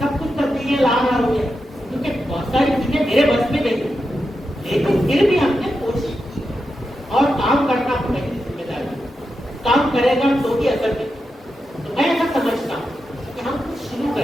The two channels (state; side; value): normal; both; correlation 0.88